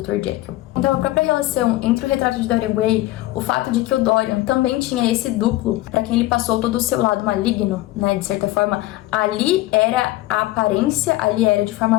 Jekyll. Então a própria relação entre o Retrato de Dorian Gray, o fato de que o Dorian também tinha esse duplo, para quem ele passou todo o seu lado maligno, né, de certa forma, ali era a aparência, ali era de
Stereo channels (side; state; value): right; quieter; 17.0 dB